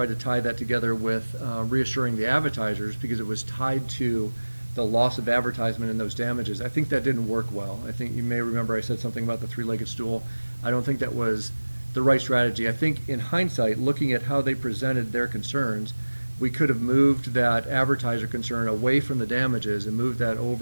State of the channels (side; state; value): both; inverted; correlation -1.00